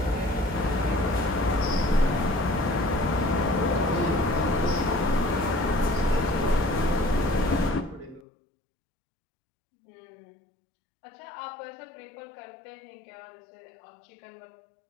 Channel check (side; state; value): right; drops out; at 8.2 s